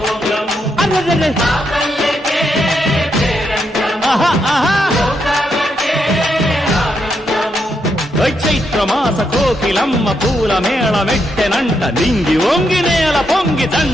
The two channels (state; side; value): normal; both; correlation 0.80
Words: చైత్రమాస కోకిలమ్మ పూల మేళ మెట్టెనంట. నింగి వంగి నేల పొంగి